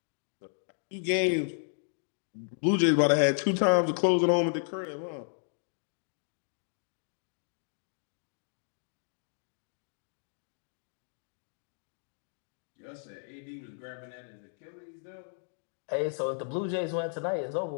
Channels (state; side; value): silent; right; digital silence